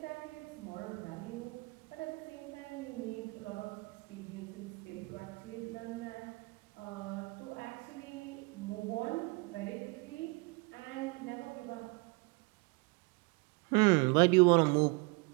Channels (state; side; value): quieter; left; 28.3 dB